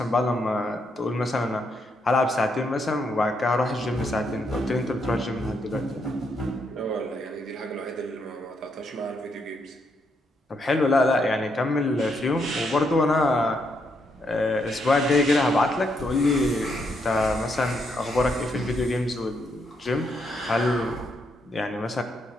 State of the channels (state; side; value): normal; both; correlation 0.77